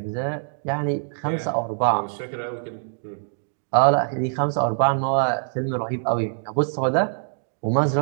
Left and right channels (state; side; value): silent; left; digital silence